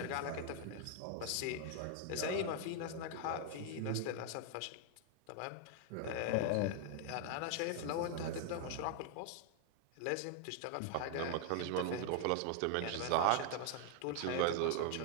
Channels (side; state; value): both; different; correlation 0.00